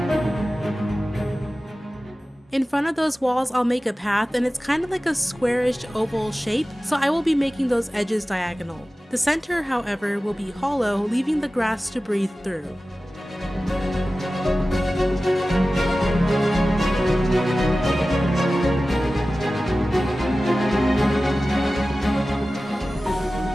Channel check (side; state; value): both; normal; correlation 0.96